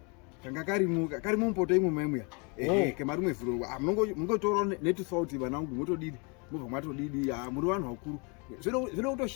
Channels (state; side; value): quieter; right; 32.7 dB